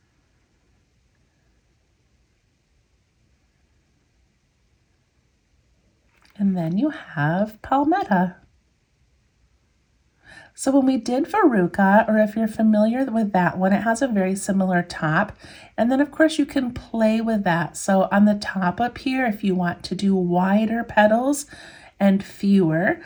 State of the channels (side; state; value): both; identical; correlation 1.00